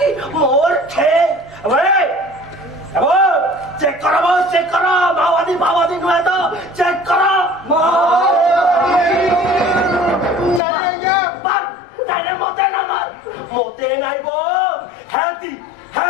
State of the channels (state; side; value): drops out; right; at 10.6 s